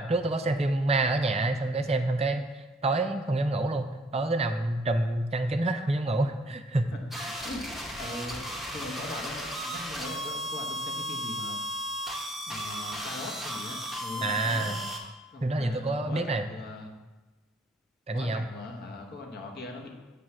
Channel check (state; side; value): normal; both; correlation 0.62